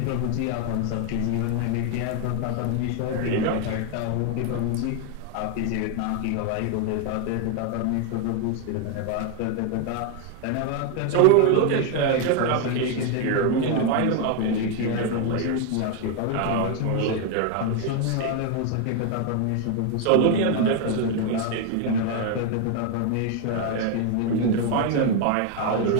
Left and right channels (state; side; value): different; both; correlation 0.01